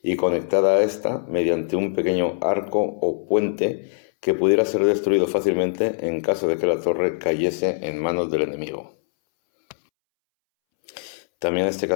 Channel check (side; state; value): right; silent; 64 dB below the other